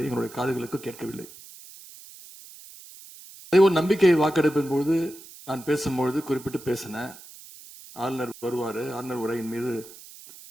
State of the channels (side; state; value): right; noise; hiss, 18 dB below the sound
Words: எங்களுடைய காதுகளுக்கு கேட்கவில்லை. அதே ஒரு நம்பிக்கை வாக்கெடுப்பின் பொழுது நான் பேசும்பொழுது குறிப்பிட்டு பேசினேன், ஆளுநர் வருவாரு, ஆளுநர் உரையின் மீது